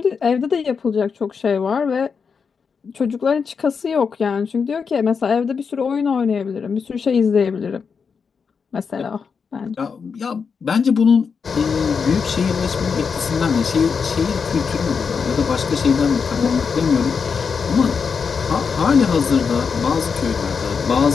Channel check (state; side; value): quieter; right; 5.8 dB